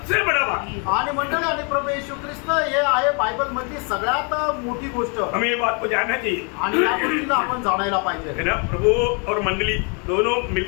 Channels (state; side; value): quieter; right; 35.9 dB